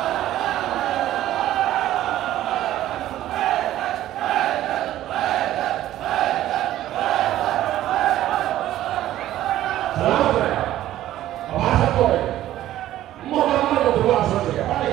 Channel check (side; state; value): left; quieter; 13.5 dB